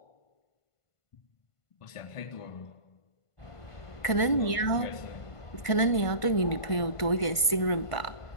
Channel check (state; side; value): late; right; 1.5 ms